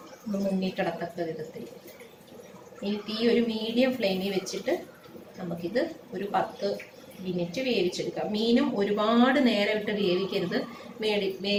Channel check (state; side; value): identical; both; correlation 1.00